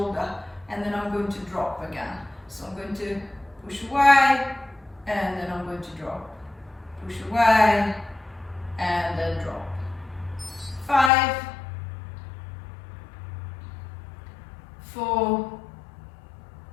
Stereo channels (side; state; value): right; drops out; at 11.1 s